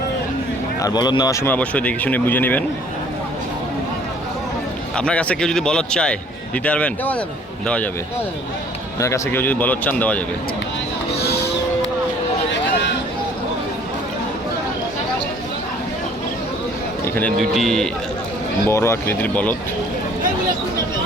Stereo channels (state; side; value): normal; both; correlation 0.55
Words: আর বলদ নেওয়ার সময় অবশ্যই দেখে শুনে বুঝে নেবেন। আপনার কাছে কেউ যদি বলদ চায় দিতে পারবেন? দেওয়া যাবে। আপনার কাছে কেউ যদি বলদ চান দেওয়া যাবে। এখানে দুইটি বড় আকৃতির বলদ,